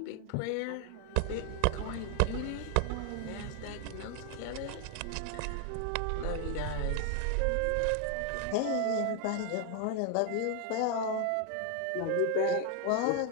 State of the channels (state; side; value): different; both; correlation 0.01